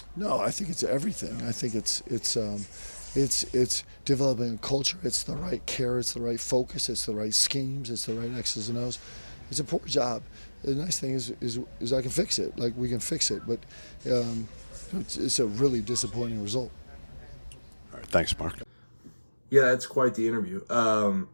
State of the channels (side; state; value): both; inverted; correlation -1.00